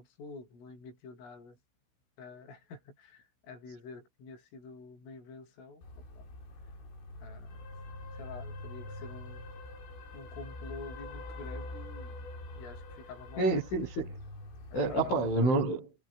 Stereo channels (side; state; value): right; late; 16 ms